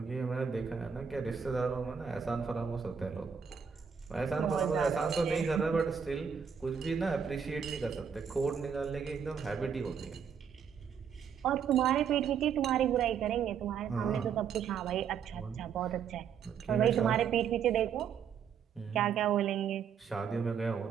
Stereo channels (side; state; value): left; quieter; 7.1 dB